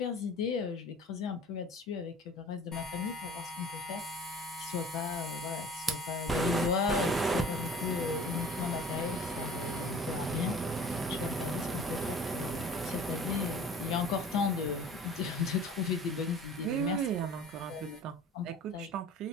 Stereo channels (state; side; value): normal; both; correlation 0.44